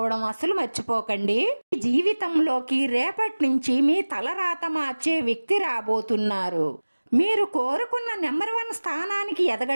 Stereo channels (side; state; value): both; inverted; correlation -1.00